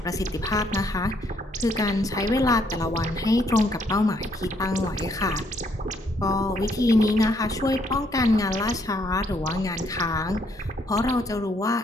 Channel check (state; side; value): normal; both; correlation 0.70